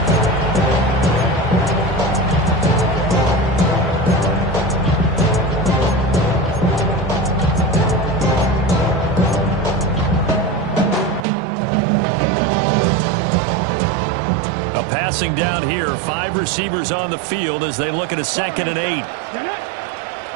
Passing down here, 5 receivers on the field as they look at a 2nd and 8.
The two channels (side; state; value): left; drops out; at 11.2 s